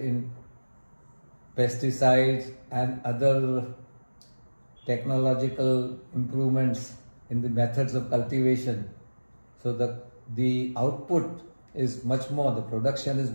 pesticides and other technological improvements in the methods of cultivation. So the output is much more, the production is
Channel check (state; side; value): inverted; both; correlation -1.00